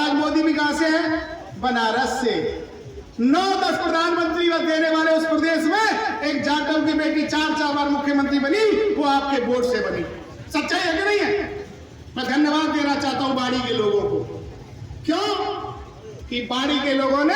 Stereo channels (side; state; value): both; identical; correlation 1.00